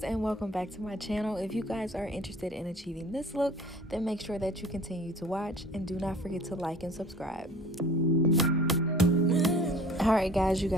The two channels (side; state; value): both; normal; correlation 0.48